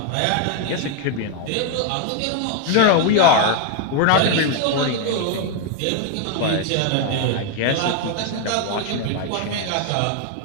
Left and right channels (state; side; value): different; both; correlation 0.01